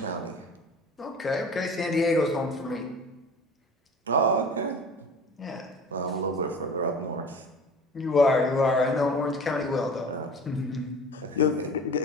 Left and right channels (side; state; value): both; normal; correlation 0.39